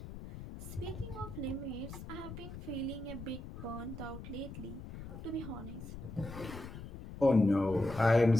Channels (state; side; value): noise; left; rumble, 11 dB below the sound